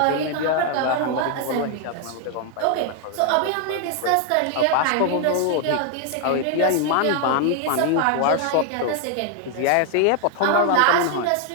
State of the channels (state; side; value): different; both; correlation 0.00